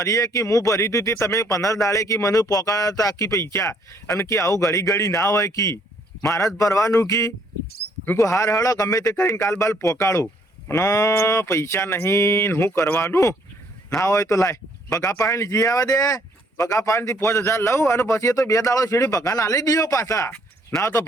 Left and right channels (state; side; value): normal; both; correlation 0.65